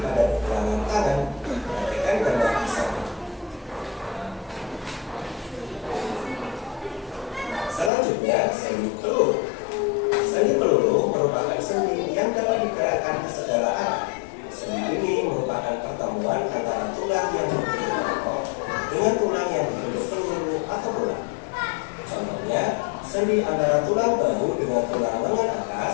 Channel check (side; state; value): right; drops out; at 7.9 s